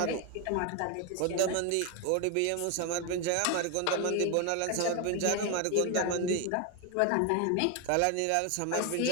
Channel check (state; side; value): different; both; correlation 0.01